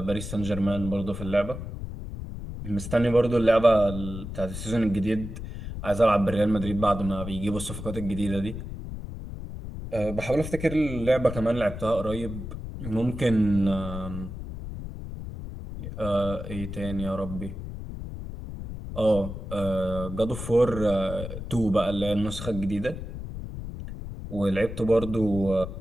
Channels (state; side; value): noise; left; rumble, 8 dB below the sound